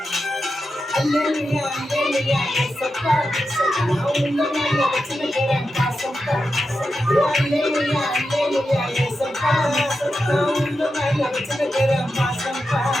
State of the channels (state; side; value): normal; both; correlation 0.89